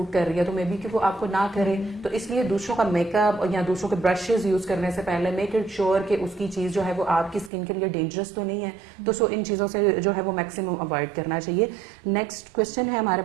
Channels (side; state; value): left; drops out; at 7.5 s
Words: کر رہی ہے, تو مے بی کہ وہ آپ کو نہ کرے. تو اس لیے دوسروں کا میک اپ یا دوسروں کے برشز یوز کرنے سے پہلے میک اٹ شیور کہ اس کی چیز جو ہے وہ آپ کی اسکن کے لیے ڈینجرس تو نہیں ہے. تو سو ان چیزوں سے جو ہے وہ میکسیمم اوائڈ کرنا چاہیے. نیکسٹ کوشچن ہے ہمارے